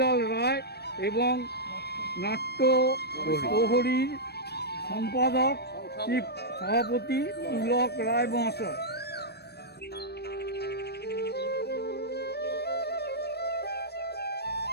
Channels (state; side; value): late; right; 0.47 ms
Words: রায় এবং নাট্য প্রহরীর সম্পাদক চিফ সভাপতি পুলক রায় মহাশয়।